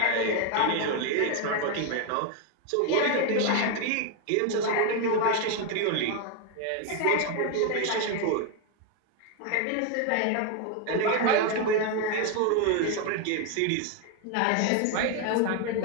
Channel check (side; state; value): both; different; correlation 0.01